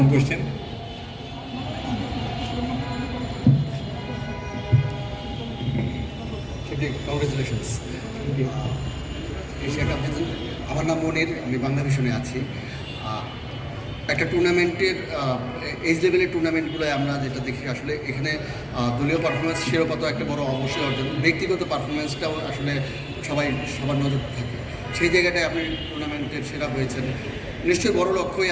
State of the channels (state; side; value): identical; both; correlation 1.00